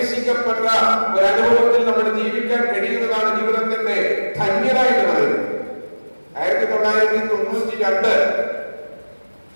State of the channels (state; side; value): inverted; both; correlation -1.00